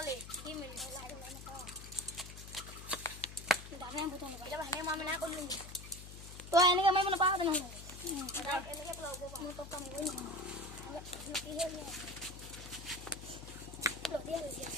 কি মিনিট লাই লাই না কাও দাবে বুতন দেবা হেনে মা না কইনি তো এনেকে মই মনে পাও না এনেকে ব্লগ মু তো কাম কই না কি হে নি ব্লগ দিয়া দিয়া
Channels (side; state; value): left; noise; hum, 12 dB below the sound